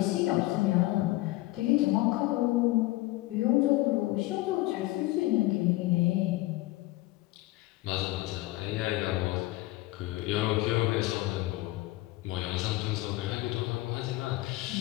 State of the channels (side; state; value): right; quieter; 18.9 dB